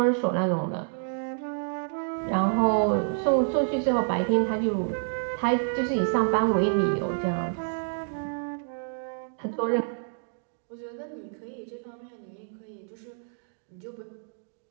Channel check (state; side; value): silent; left; digital silence